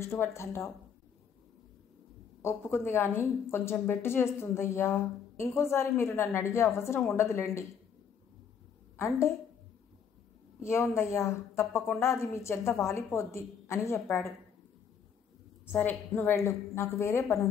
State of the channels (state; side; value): quieter; right; 7.3 dB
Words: ఒప్పుకుంది కానీ కొంచెం బెట్టు చేస్తుందయ్యా. ఇంకోసారి మీరు నన్ను అడిగే అవసరం ఉండదులేండి. అంటే ఏముందయ్యా, తప్పకుండా అది మీ చెంత వాలిపోద్ది అని చెప్పాడు. సరే నువ్వు వెళ్ళు, నాకు వేరే